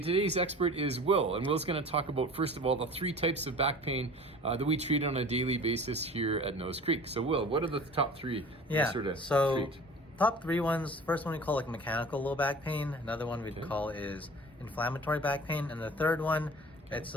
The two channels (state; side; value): normal; both; correlation 0.42